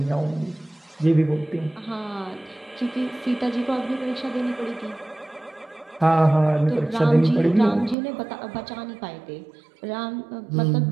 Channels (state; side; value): drops out; left; at 8.0 s